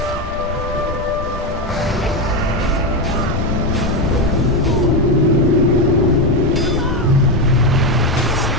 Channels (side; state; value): both; normal; correlation 0.10